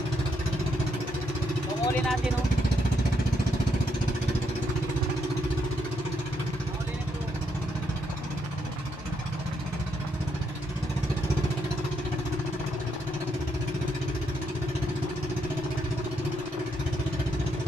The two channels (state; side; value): normal; both; correlation 0.77